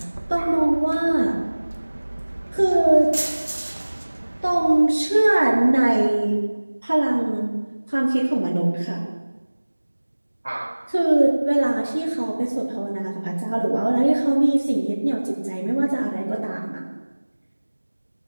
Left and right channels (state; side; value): inverted; both; correlation -1.00